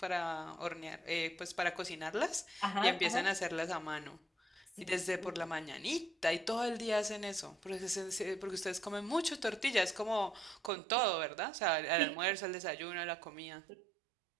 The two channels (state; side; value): drops out; left; at 10.7 s